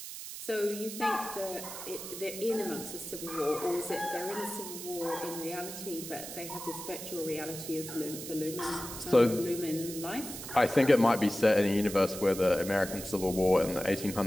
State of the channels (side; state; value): right; noise; hiss, 9 dB below the sound